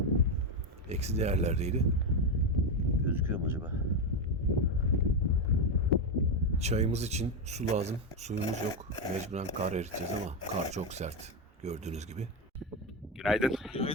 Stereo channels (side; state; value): both; normal; correlation 0.09